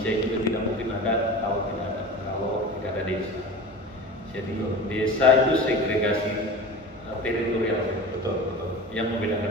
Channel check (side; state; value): both; normal; correlation 0.34